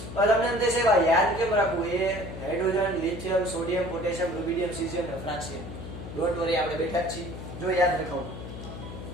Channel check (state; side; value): noise; left; hum, 10 dB below the sound